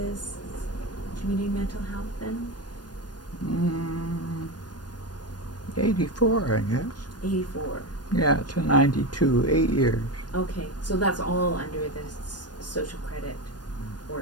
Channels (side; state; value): right; late; 0.69 ms